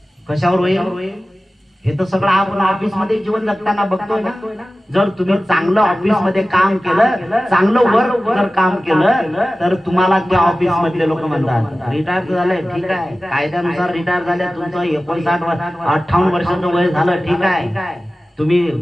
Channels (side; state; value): both; normal; correlation 0.96